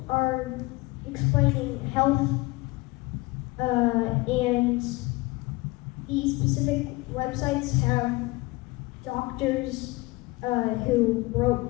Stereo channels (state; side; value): quieter; right; 22.7 dB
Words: are explaining health, and these specific websites have doctors who